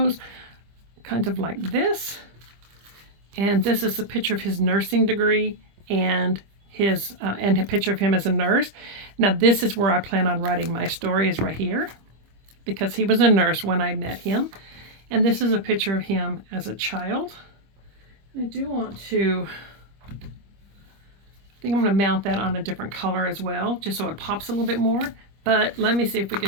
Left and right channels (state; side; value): late; left; 25 ms